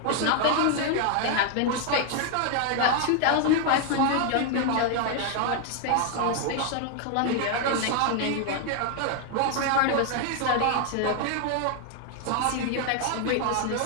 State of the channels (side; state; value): both; different; correlation 0.00